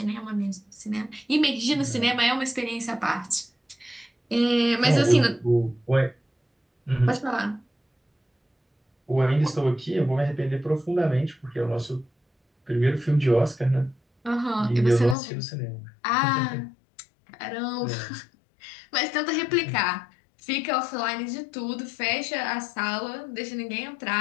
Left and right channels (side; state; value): right; drops out; at 15.2 s